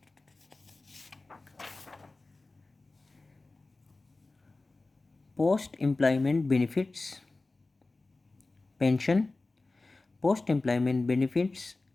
post-employment benefits, pension, post-employment benefits,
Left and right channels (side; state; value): right; quieter; 3.3 dB